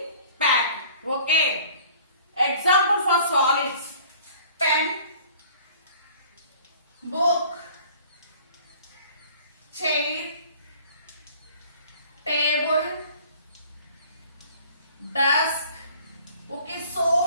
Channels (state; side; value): inverted; both; correlation -0.50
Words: packed. Okay. Example for solids, pen, book, chair, table, desk. Okay, so